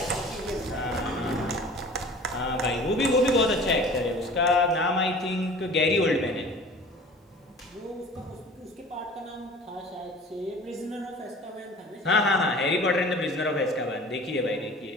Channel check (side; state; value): both; normal; correlation 0.43